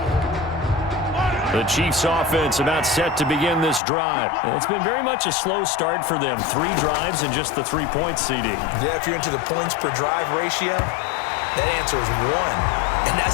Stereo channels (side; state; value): right; drops out; at 3.8 s